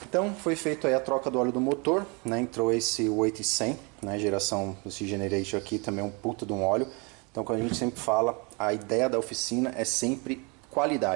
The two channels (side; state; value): left; quieter; 31.1 dB